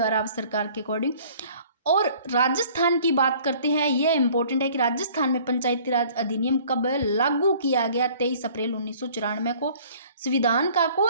राव सरकार के अकॉर्डिंग। और राजस्थान की बात करते हैं, यह इंपॉर्टेंट है कि राजस्थान में पंचायती राज अधिनियम कब लागू किया गया, 23 अप्रैल 1994 को। संविधान का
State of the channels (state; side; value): inverted; both; correlation -0.53